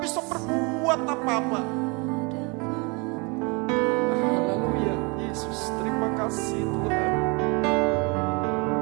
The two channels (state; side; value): quieter; left; 30.1 dB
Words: bisa berbuat apa-apa. Haleluya, Yesus, terima kasih Tuhan.